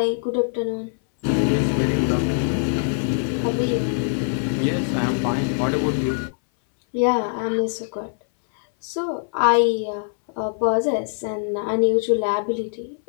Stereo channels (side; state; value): right; silent; 61 dB below the other